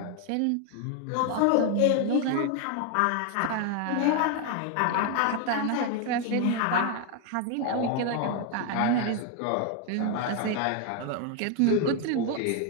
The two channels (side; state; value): both; different; correlation 0.01